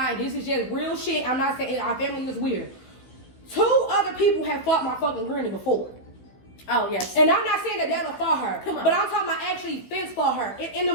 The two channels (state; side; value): late; right; 15 ms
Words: This is just real shit. I'm not saying our family is weird. 2 other people have fought my fucking granny before. Oh, yes. And I'm not saying that that'll for her, Come on. but I'm talking about actually fence for her in the